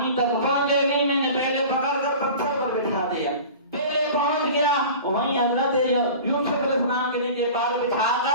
تک پہنچے نہیں، میں نے پہلے پکڑ کر پتھر پر بٹھا دیا، پہلے پہنچ گیا، وہیں حضرت یوسف علیہ السلام کے لیے پال بٹھا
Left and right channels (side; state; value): both; inverted; correlation -0.38